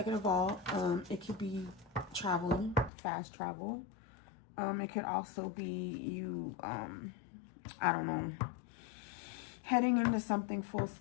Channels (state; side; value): drops out; right; at 2.9 s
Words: of all, it could be traveling, fast travel. It could also be you, I don't know, heading into something full